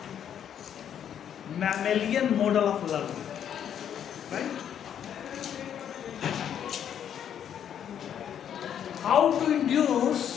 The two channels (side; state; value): right; quieter; 9.2 dB